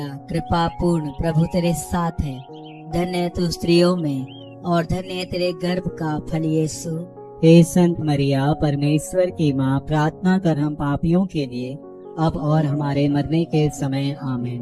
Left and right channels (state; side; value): identical; both; correlation 1.00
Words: कृपा पूर्ण, प्रभु तेरे साथ है, धन्य है तू स्त्रियों में और धन्य है तेरे गर्भ का फल यीशु। हे संत मरिया, परमेश्वर की माँ, प्रार्थना कर हम पापियों के लिए अब और हमारे मरने के समय।